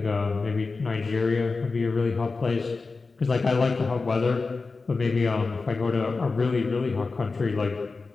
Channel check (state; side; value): quieter; right; 4.1 dB